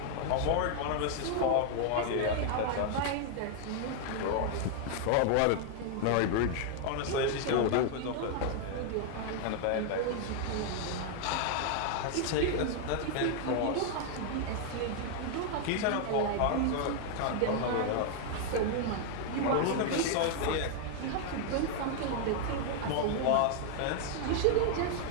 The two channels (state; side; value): different; both; correlation 0.00